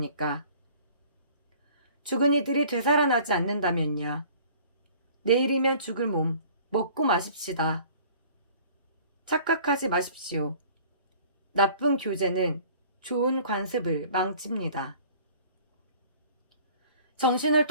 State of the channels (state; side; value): inverted; both; correlation -0.50